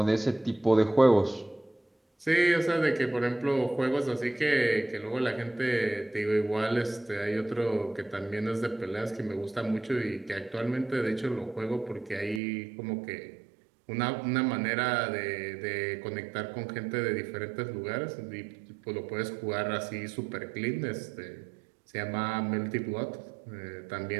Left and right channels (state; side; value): drops out; left; at 12.4 s